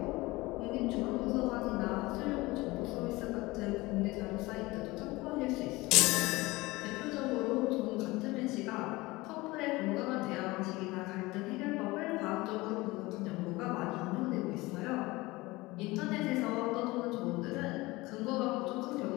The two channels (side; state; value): right; quieter; 21.2 dB